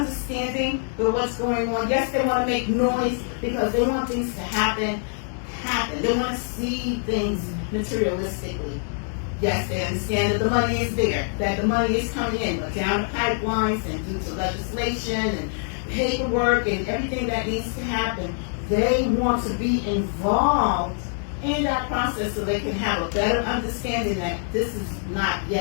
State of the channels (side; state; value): right; silent; 62 dB below the other